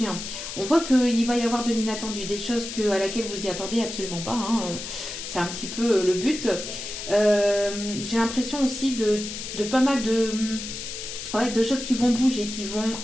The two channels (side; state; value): left; noise; hiss, 8 dB below the sound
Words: On voit qu'il va y avoir de l'inattendu, des choses à laquelle vous y attendez absolument pas. C'est un petit peu le but. J'ai l'impression aussi de pas mal de choses qui vont bouger, qui vont